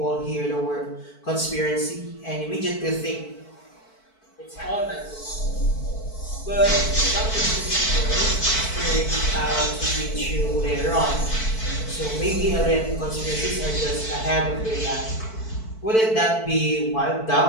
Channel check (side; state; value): right; late; 4.5 ms